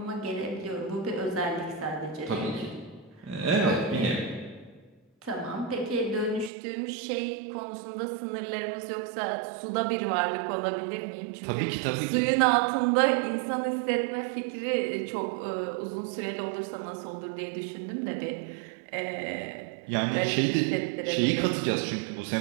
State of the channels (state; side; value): drops out; left; at 6.5 s